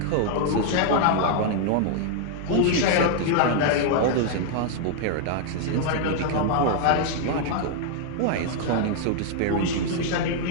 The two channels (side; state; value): both; different; correlation 0.00